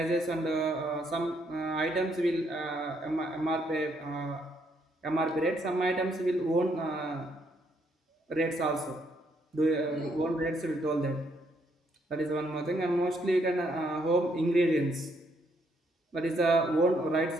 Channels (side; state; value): both; normal; correlation 0.72